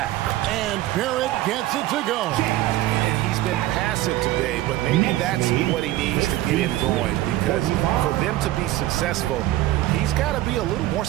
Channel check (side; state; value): left; quieter; 15.5 dB